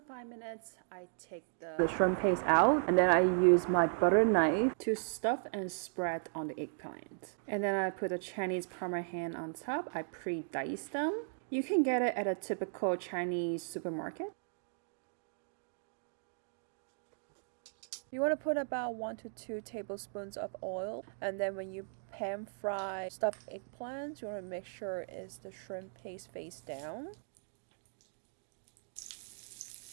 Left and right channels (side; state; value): left; silent; digital silence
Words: minutes, I take the shrimp paste out and then I use my butter knife to stuff and spread on the eggplant. And then I put the Chinese Parmesan on top. I pre-dice them. You can get it at a typical Chinese supermarket. You want to put about 1 to 2 tablespoons of oil, and then when you pan fry stuffed eggplants, you want to make sure it's the shrimp paste face down.